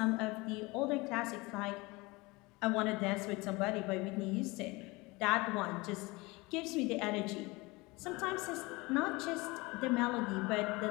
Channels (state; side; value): quieter; right; 23.9 dB